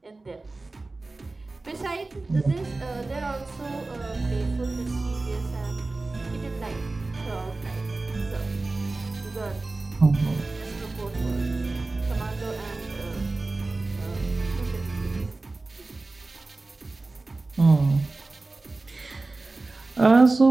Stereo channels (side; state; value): left; quieter; 3.3 dB